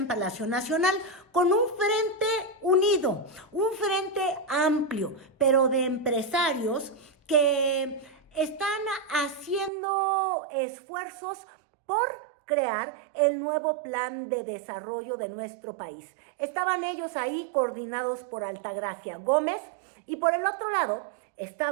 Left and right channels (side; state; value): left; drops out; at 9.7 s